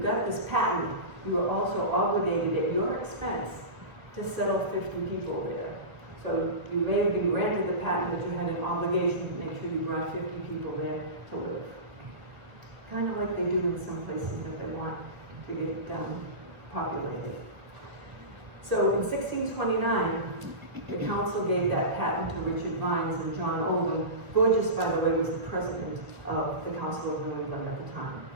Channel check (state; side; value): late; left; 1.6 ms